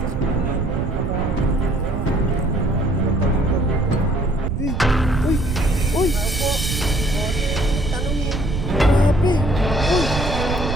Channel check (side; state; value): right; noise; rumble, 3 dB below the sound